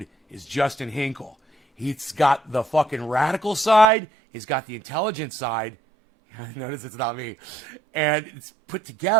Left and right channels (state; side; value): drops out; left; at 3.9 s